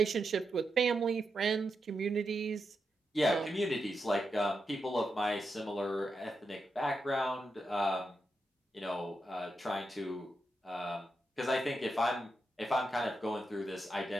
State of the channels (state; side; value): normal; both; correlation 0.86